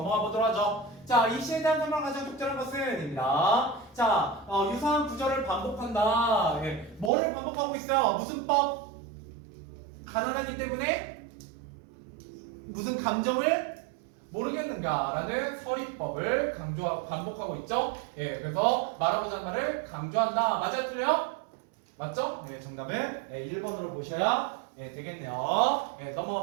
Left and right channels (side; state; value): left; drops out; at 7.1 s